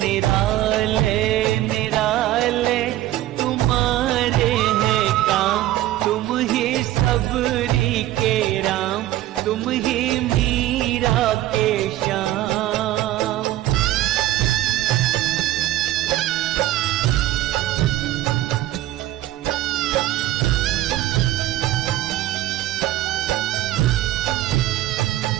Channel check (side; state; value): left; quieter; 14.8 dB